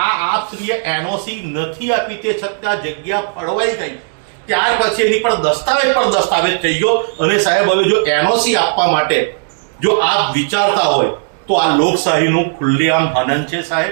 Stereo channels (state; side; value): silent; left; digital silence